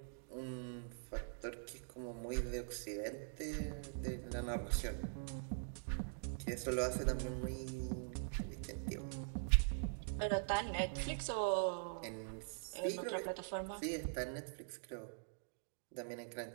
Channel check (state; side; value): silent; left; digital silence